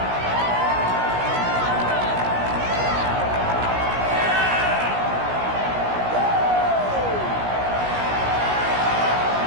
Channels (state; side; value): late; left; 16 ms